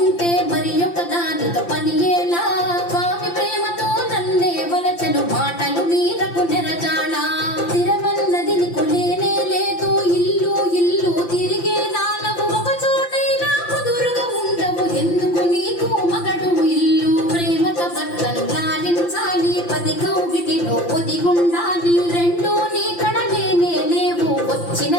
మరి ఒక దానితో పని ఎలా స్వామి ప్రేమతో నన్నే వలచను మాటలు మీరకు నెరజాడా స్థిరమన్నది నీకు లేనే లేదు ఇల్లు ఇల్లు తిరిగే దానవు ఒక చోటైనా కుదురుగా ఉండవు ఎందుకు నీకు మగడు ఇల్లు ప్రేమతో భర్తను లాలించాలి పది కౌగిటిలో ఒదిగుండాలి రెండూ నీ కడలేనే లేవు వచ్చిన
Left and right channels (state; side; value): late; right; 5.8 ms